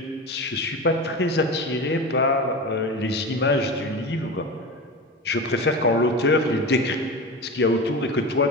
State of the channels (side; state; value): both; normal; correlation 0.27